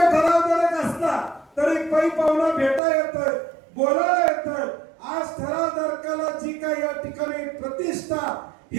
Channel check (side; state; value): left; drops out; at 2.8 s